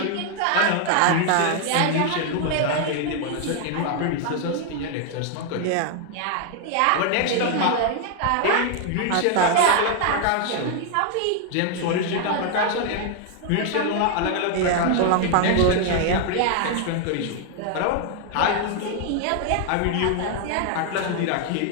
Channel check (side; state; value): both; different; correlation 0.00